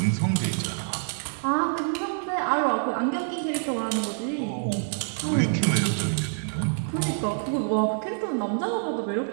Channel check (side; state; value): left; silent; 61 dB below the other